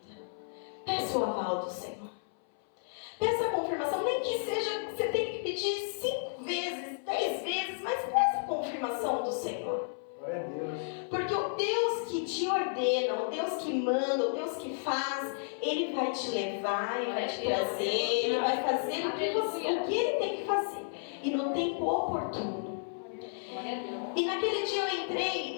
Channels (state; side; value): silent; right; 56 dB below the other